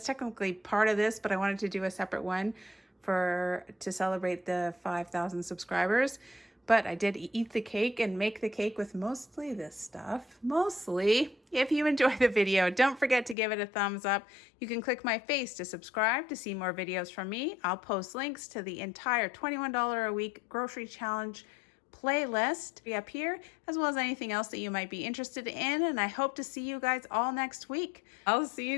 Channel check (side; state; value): right; drops out; at 13.4 s